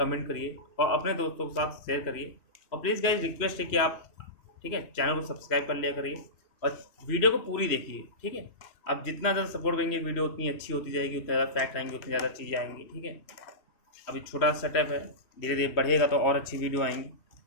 करिए और अपने दोस्तों के साथ शेयर करिए। और प्लीज़ गाइज रिक्वेस्ट है कि आप, ठीक है, चैनल को सब्सक्राइब कर लिया करिए और वीडियो को पूरी देखिए, ठीक है। आप जितना ज़्यादा सपोर्ट करेंगे वीडियो उतनी अच्छी होती जाएगी, उतना ज़्यादा फैक्ट आएंगे, उतनी ज़्यादा चीज़ें आएंगी, ठीक है। अभी छोटा सेटअप है, धीरे धीरे बढ़ेगा तो और अच्छी वीडियो आएंगी।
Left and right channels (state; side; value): late; right; 3.0 ms